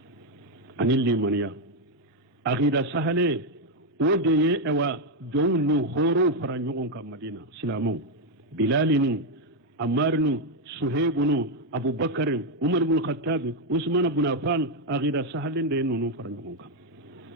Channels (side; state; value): both; normal; correlation 0.03